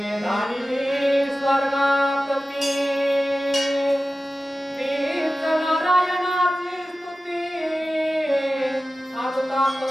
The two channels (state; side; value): normal; both; correlation 0.95